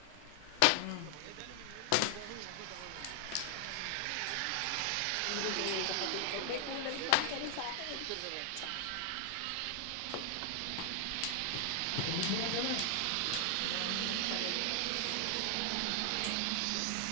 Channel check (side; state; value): both; different; correlation 0.00